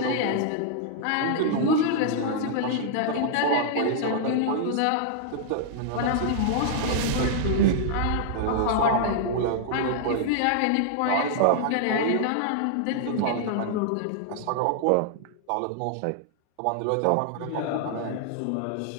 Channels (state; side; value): different; both; correlation -0.01